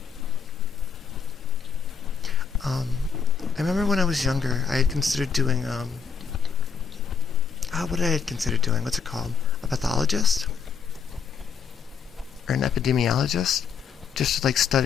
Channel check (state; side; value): quieter; right; 6.3 dB